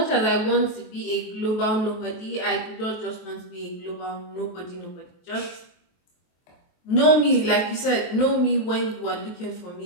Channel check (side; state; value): right; late; 23 ms